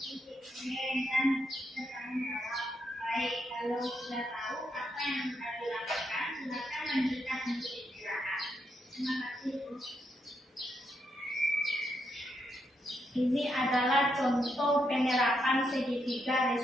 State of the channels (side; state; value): both; normal; correlation 0.79